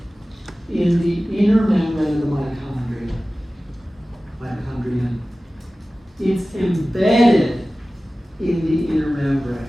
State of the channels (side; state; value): both; normal; correlation 0.96